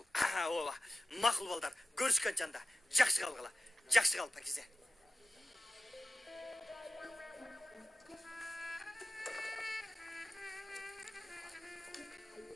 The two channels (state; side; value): normal; both; correlation 0.93